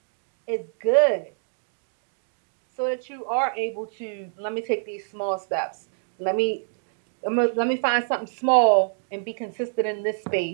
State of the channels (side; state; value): left; silent; digital silence